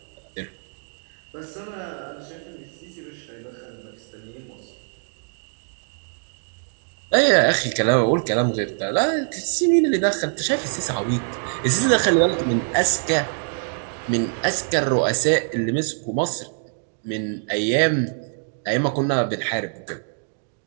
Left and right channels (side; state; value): left; silent; digital silence